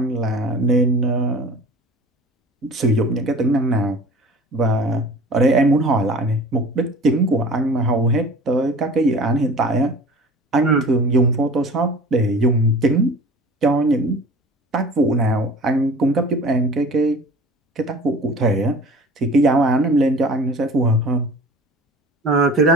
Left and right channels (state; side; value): normal; both; correlation 0.42